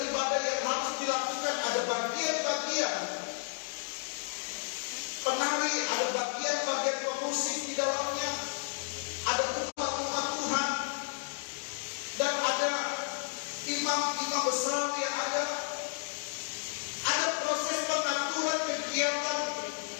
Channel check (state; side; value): silent; right; digital silence